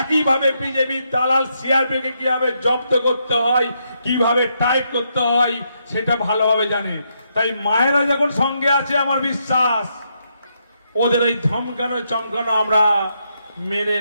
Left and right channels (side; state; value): both; inverted; correlation -0.79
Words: বিজেপি দালাল সিআরপিএফকে কিভাবে জব্দ করতে হয়, কিভাবে টাইপ করতে হয় সেটা ভালোভাবে জানে। তাই মায়েরা যখন সঙ্গে আছে, আমার বিশ্বাস ওদের এই ধমকানো চমকানো আমরা মেনে